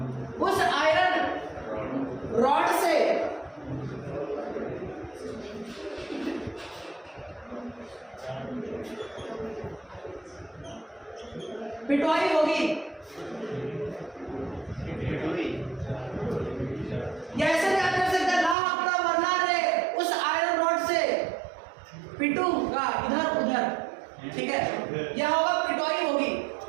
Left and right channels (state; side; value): drops out; left; at 18.6 s